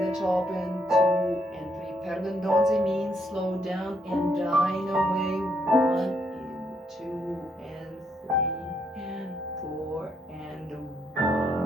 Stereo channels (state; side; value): normal; both; correlation 0.75